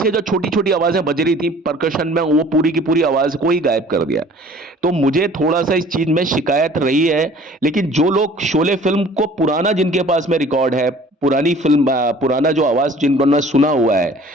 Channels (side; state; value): both; normal; correlation 0.50